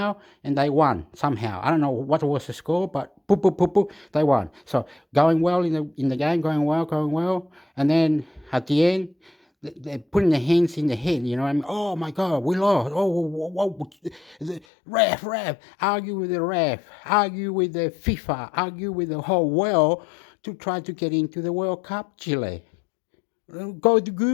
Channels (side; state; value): right; drops out; at 14.6 s